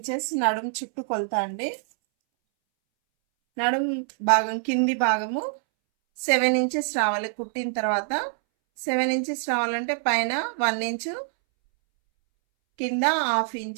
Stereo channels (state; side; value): silent; left; 62 dB below the other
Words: నడుము చుట్టూ కొలతా అండి. నడుము భాగం కింది భాగము 7 ఇంచెస్ రావాలి కుట్టిన తర్వాత. 7 ఇంచెస్ రావాలంటే పైన 1 ఇంచు, కింద 1/2